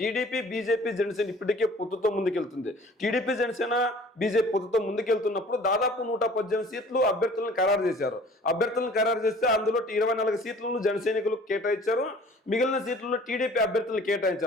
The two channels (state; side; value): normal; both; correlation 0.50